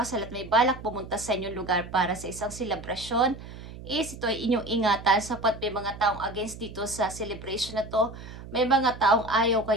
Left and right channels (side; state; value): right; noise; hum, 14 dB below the sound